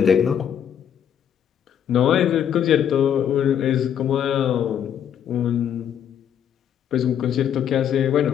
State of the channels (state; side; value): quieter; right; 9.1 dB